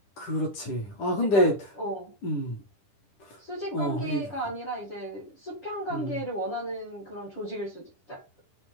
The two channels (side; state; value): right; late; 10 ms